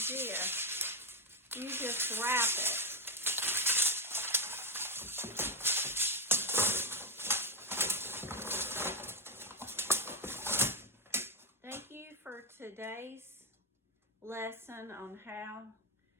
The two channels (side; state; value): both; normal; correlation 0.04